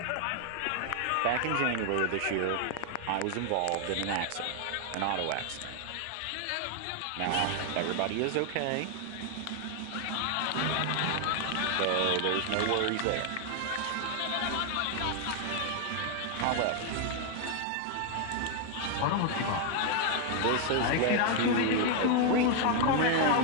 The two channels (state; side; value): different; both; correlation 0.00